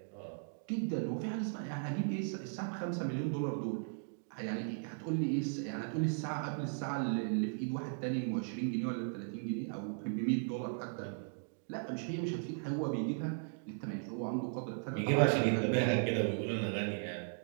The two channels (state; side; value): silent; left; digital silence